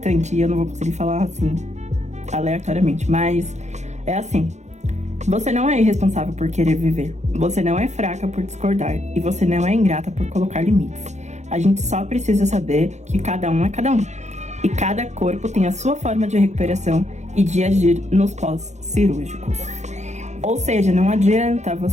e eu não vou conseguir falar assim, aleatoriamente. Mas é assim: você não é irresponsável por querer viver. Você não é fraca por discordar. E você não é ingrata por colocar limites. A gente só precisa saber que cada um é cada um. E cada corpo tem a sua forma de recuperação e de agir nos pós-cirúrgicos. Ou seja, não adianta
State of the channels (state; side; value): late; left; 0.33 ms